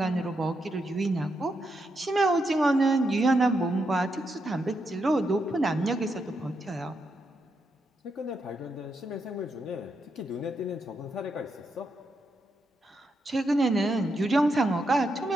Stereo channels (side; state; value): both; normal; correlation 0.82